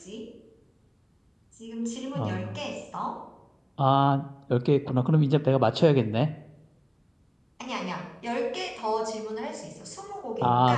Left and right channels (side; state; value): both; identical; correlation 1.00